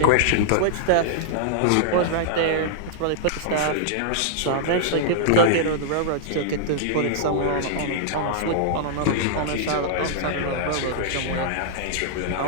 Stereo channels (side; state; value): both; different; correlation -0.01